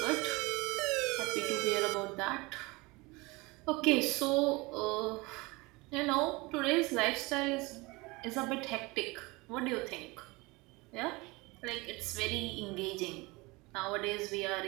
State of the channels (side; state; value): left; quieter; 24.0 dB